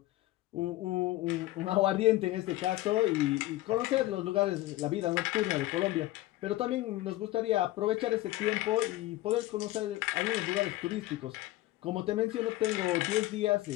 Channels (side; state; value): right; quieter; 16.8 dB